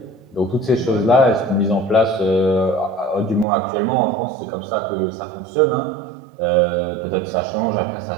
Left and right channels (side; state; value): left; drops out; at 3.5 s